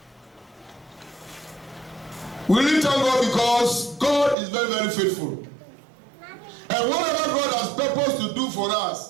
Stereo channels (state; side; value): drops out; left; at 4.4 s